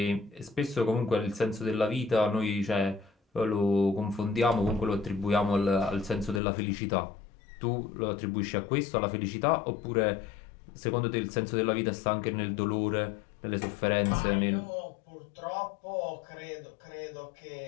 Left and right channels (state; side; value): drops out; right; at 6.4 s